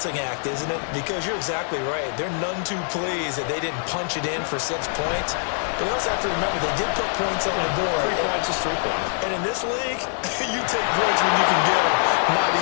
act, isn't it? Because you're exactly right. They're none too pleased that they didn't punch it in for 6 points. But they also have to remember they did put points on the board. 3 points is 3 points. And in this league, you take points when you can get them. Not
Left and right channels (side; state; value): right; silent; 55 dB below the other